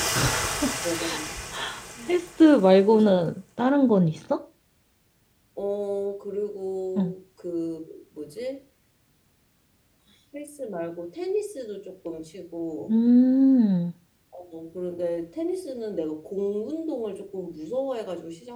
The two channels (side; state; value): both; identical; correlation 1.00